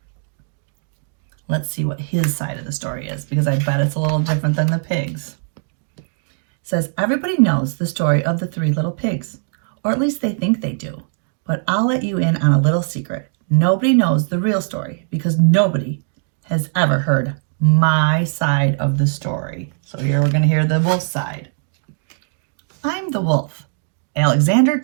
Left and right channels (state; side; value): silent; left; digital silence